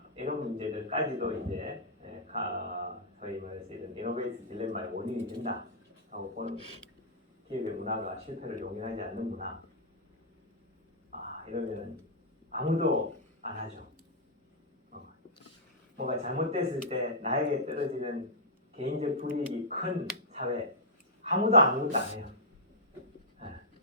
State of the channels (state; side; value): normal; both; correlation -0.11